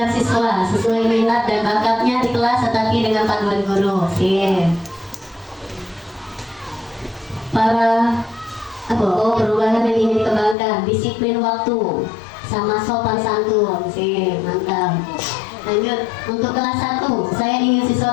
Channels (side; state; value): right; drops out; at 10.6 s